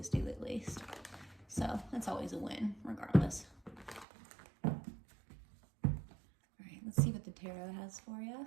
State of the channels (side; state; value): left; drops out; at 4.0 s